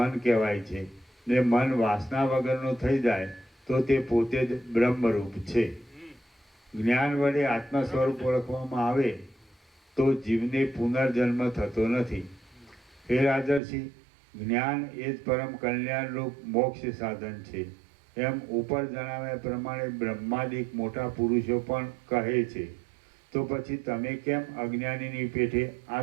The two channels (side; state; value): left; drops out; at 13.6 s